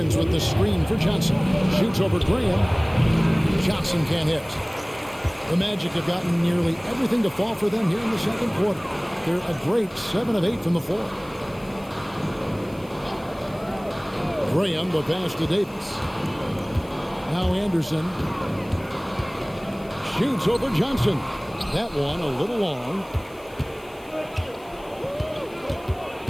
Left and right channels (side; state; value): left; noise; hiss, 26 dB below the sound